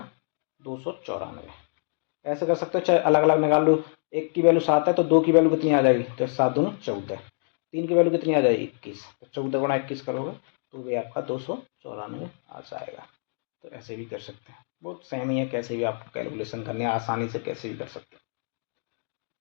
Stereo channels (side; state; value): right; silent; 61 dB below the other